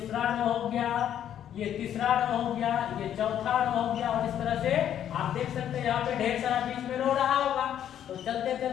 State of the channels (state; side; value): quieter; right; 10.2 dB